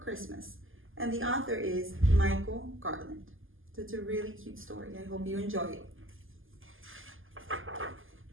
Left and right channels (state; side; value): late; left; 0.59 ms